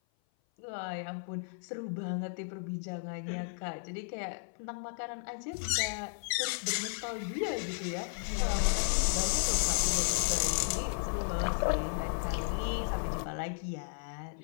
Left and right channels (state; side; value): silent; right; 55 dB below the other